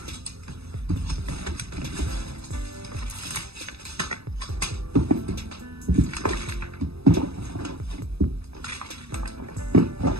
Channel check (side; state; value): left; late; 0.78 ms